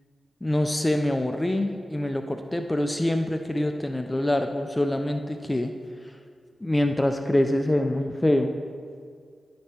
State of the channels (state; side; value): normal; both; correlation 0.97